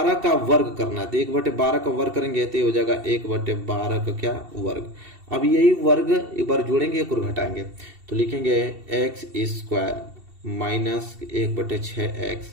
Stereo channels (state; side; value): late; left; 2.7 ms